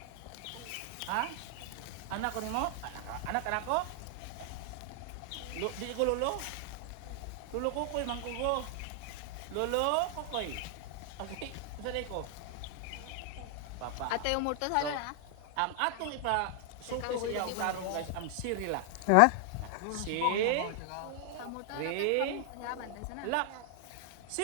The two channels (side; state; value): both; different; correlation 0.00